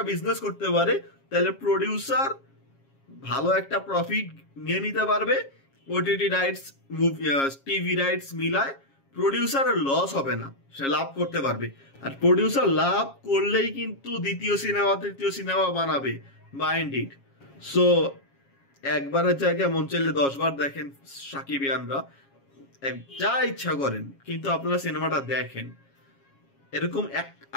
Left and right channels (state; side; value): late; right; 7.3 ms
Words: বিজনেস করতে পারে, তাহলে প্রডিউসার ভালো একটা প্রফিট নিয়ে নিতে পারবে। ওটিটি রাইটস, টিভি রাইটস মিলায় প্রডিউসারের লস হবে না, সে লাভ করতে পারবে। আর প্রডিউসার লাভ করলেই কিন্তু দ্বিতীয় সিনেমা তৃতীয় সিনেমা বানাবে, মাইন্ড ইট। সো একবারের জায়গায় মন চাইলে 10 বার দেখেন সাকিবিয়ানরা, যা ইচ্ছা করেন, কিন্তু আপনারা সিনেমাটা দেখেন। এরকম